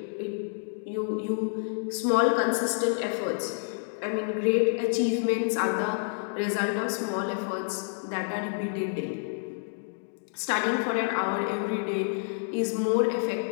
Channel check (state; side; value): silent; right; digital silence